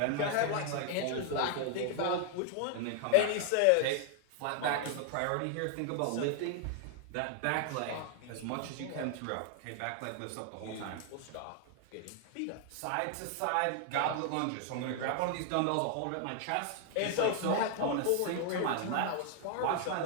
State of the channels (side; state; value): both; different; correlation 0.00